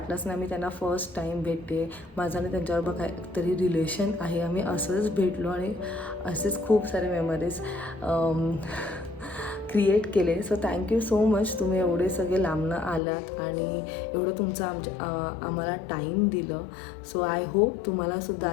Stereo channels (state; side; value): drops out; right; at 13.0 s